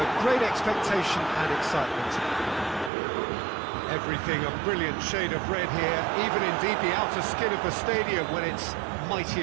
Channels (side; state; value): left; drops out; at 2.9 s